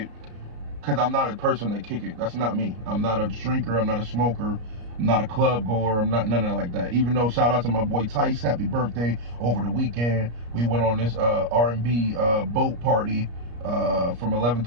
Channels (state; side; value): late; left; 34 ms